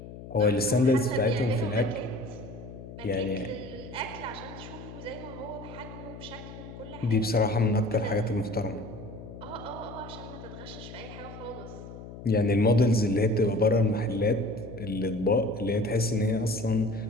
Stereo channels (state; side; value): noise; left; hum, 13 dB below the sound